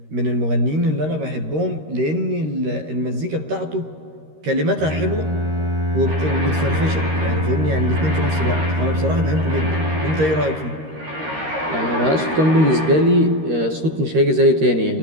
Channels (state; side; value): late; left; 13 ms